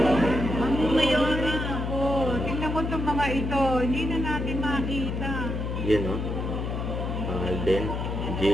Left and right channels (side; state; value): left; noise; hum, 3 dB below the sound